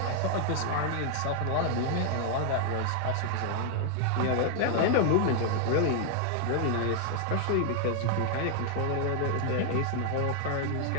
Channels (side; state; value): both; different; correlation 0.00